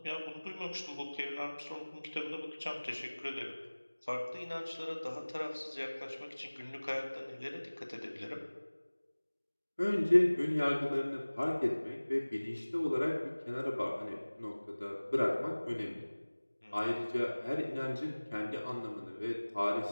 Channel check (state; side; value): inverted; both; correlation -1.00